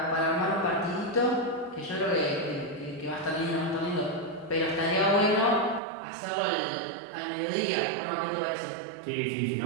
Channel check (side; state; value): left; drops out; at 5.8 s